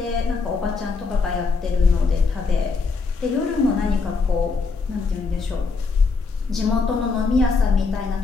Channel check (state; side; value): quieter; right; 4.4 dB